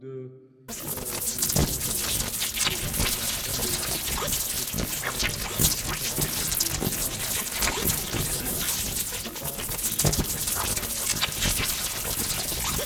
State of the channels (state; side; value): identical; both; correlation 1.00